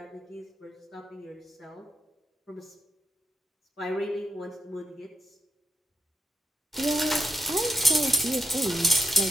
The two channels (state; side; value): normal; both; correlation 0.83